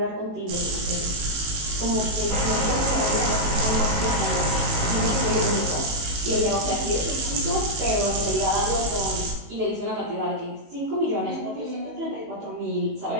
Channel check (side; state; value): left; late; 19 ms